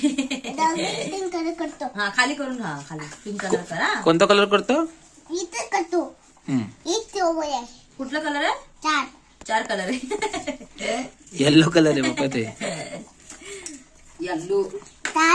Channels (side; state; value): both; identical; correlation 1.00